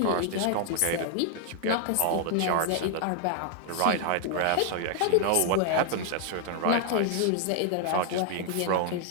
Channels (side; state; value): both; different; correlation 0.00